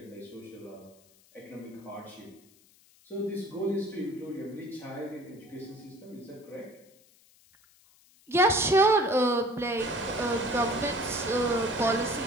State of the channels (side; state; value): left; noise; hiss, 29 dB below the sound